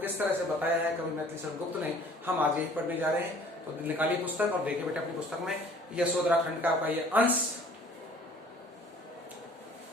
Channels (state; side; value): normal; both; correlation 0.52